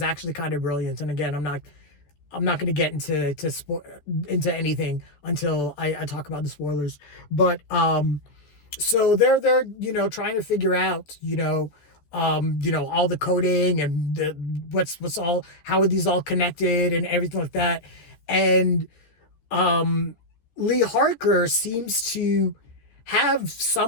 actually kind of brilliant. And again, I'm not going to get into anything until I talk about the spoilers. But so they're trying to figure out all the coding and what's all, how are these all connected and everything like that. And Lee Harker seems to have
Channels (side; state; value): right; late; 13 ms